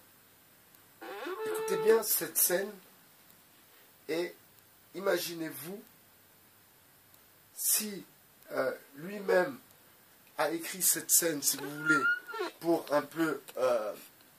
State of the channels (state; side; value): identical; both; correlation 1.00